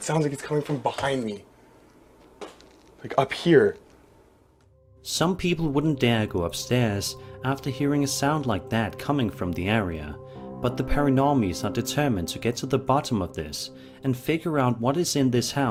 sounds like it's coming from behind me. Like up here. Some people wouldn't dare go upstairs after hearing a sound like that coming from the area, but the paranormies are determined to get to the bottom of this and figure out what is in this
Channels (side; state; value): both; identical; correlation 1.00